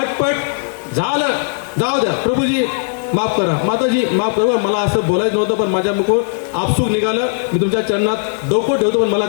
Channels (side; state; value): right; silent; digital silence